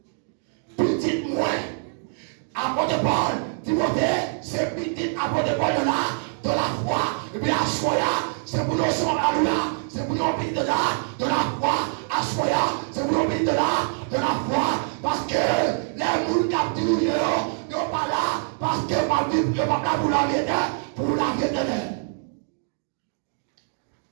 Petit moins. Apôtre de Paul, Timothée, c'est petit apôtre de Paul dans la foi. Et puis à Soya, c'est pour nous c'est pour nous de la foi. À Soya, c'est pour nous de la foi. Parce que les moules capturent, ils ne sont pas là. Parce que ma Bible n'est pas là pour la vérité.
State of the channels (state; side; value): silent; left; digital silence